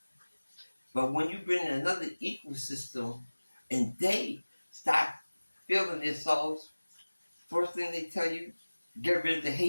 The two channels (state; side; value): inverted; both; correlation -1.00